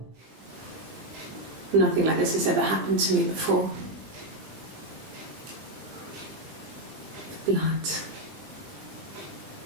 Nothing like this has ever happened to me before. The blood.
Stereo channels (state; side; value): late; left; 20 ms